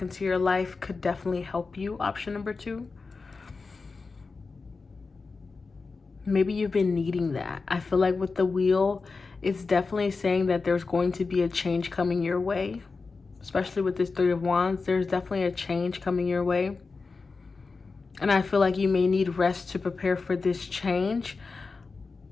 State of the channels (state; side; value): quieter; right; 4.3 dB